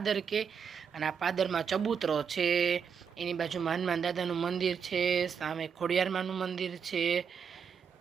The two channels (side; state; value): left; quieter; 6.8 dB